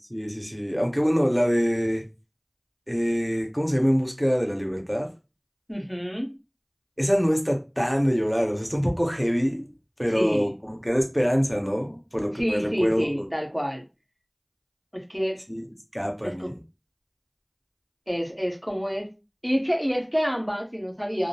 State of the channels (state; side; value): identical; both; correlation 1.00